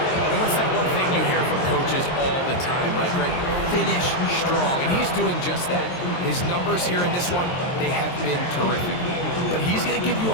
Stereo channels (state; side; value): late; right; 23 ms